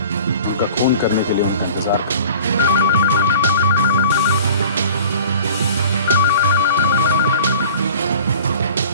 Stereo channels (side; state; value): both; inverted; correlation -0.44